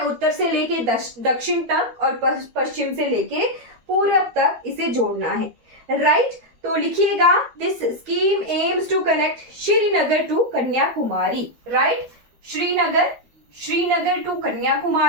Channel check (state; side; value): late; left; 13 ms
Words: से लेके दक्षिण तक और पश्चिम से लेके पूर्व तक इसे जोड़ना है, राइट। तो लिखिएगा, this scheme aims to connect Srinagar to Kanyakumari, right, Srinagar to